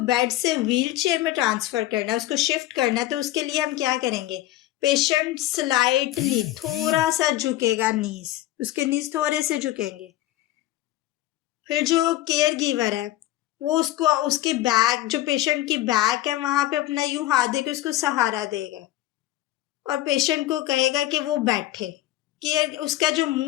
से व्हील चेयर में ट्रांसफ़र करना है, उसको शिफ्ट करना है, तो उसके लिए हम क्या करेंगे, पेशेंट स्लाइटली थोड़ा सा झुकेगा, उसके नीज थोड़े से झुकेंगे। फिर जो केयर गिवर है वो उसको उसकी बैक जो पेशेंट की बैक है वहाँ पे अपना यूं हाथ देके उसको सहारा देगा और पेशेंट को कहेगा कि वो बैठे। उसका जो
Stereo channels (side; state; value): right; quieter; 15.3 dB